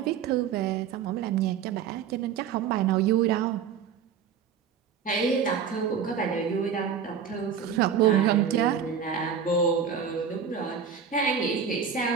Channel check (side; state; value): left; quieter; 7.3 dB